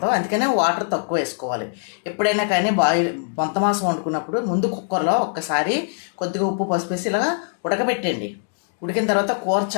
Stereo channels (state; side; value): silent; right; digital silence